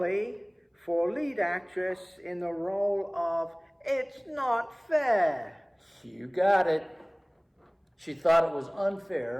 for lead actress in the role of It's Not Fair. You got it. She thought it was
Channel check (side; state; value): both; identical; correlation 1.00